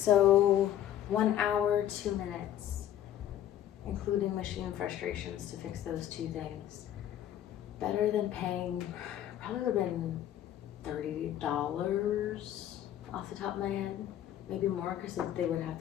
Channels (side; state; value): right; quieter; 11.5 dB